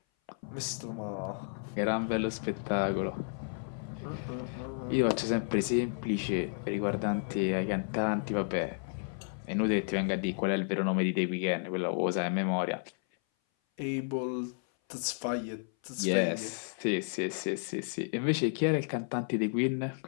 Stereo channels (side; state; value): right; silent; 56 dB below the other